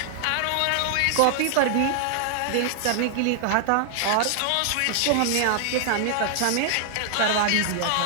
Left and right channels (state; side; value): different; both; correlation 0.00